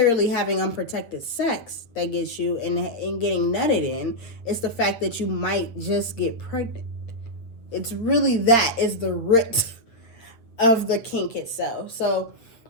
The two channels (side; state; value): right; late; 8.5 ms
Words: having unprotected sex that gets you and getting nutted in. It's the fact that you might just get pregnant. It's really that is the root of the kink itself. So